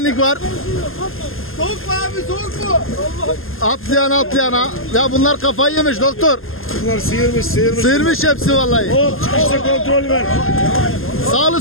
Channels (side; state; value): right; late; 0.60 ms